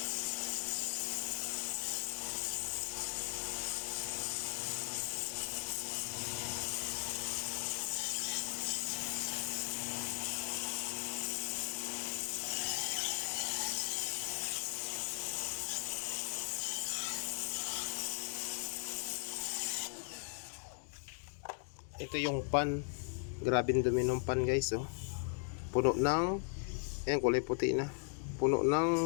Ito yung pan. Grabe yung dumi ng pan guys oh. Puno ng ayan, kulay puti na. Puno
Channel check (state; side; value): silent; right; 52 dB below the other